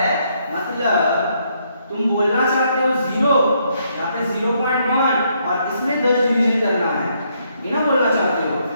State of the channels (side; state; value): both; inverted; correlation -0.73